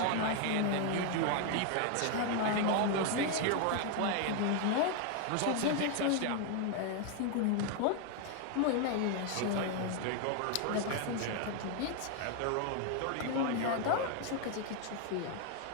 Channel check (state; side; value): different; both; correlation 0.01